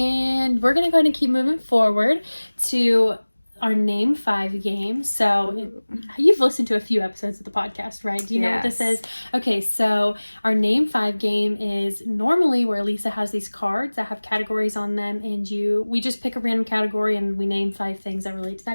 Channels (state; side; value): inverted; both; correlation -1.00